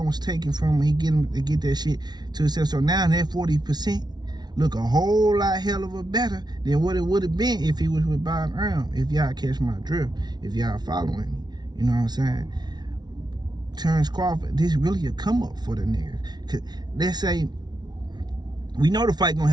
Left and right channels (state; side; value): late; left; 0.20 ms